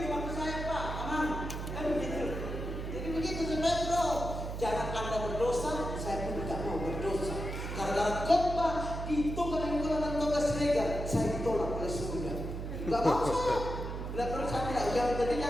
waktu saya Pak, aman. Kan begitu. Jadi begitu sebenarnya bro. Jangan Anda berdosa, saya pun tidak mau berdosa. Karena khotbah di Toga Nenggolan dan Toga Siregar, saya ditolak oleh surga. Gak mau saya. Bila perlu saya tidak, yang penting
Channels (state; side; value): noise; right; hum, 5 dB below the sound